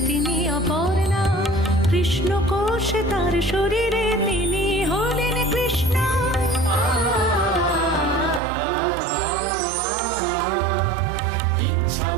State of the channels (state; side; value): drops out; left; at 8.4 s